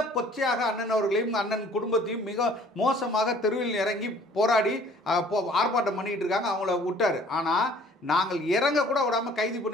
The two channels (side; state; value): both; normal; correlation 0.54